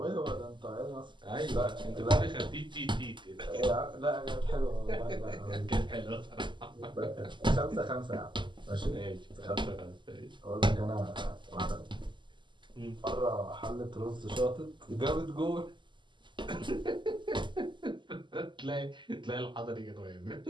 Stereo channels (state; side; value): late; left; 0.23 ms